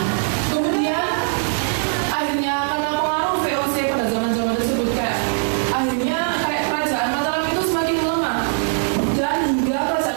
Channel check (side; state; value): left; silent; digital silence